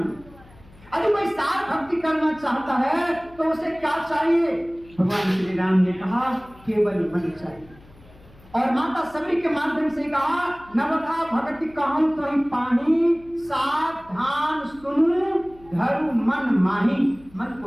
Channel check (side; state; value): left; noise; hum, 25 dB below the sound